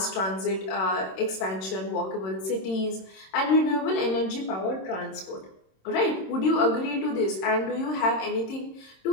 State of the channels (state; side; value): late; right; 26 ms